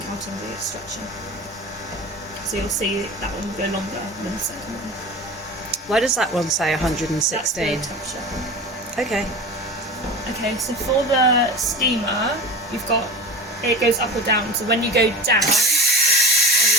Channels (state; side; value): normal; both; correlation 0.31